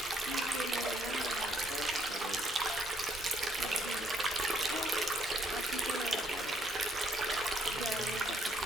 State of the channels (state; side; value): normal; both; correlation 0.70